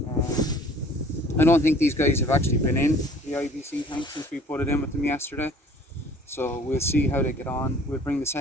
I don't think these guys have actually been in the IBC tank since we put it in with them yesterday, so we'll see how they get on. We'll bring the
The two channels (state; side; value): normal; both; correlation 0.51